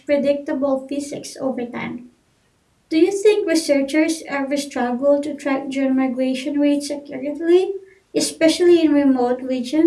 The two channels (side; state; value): both; identical; correlation 1.00